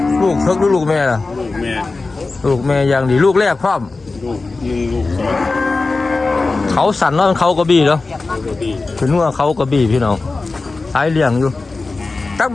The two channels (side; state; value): right; quieter; 3.7 dB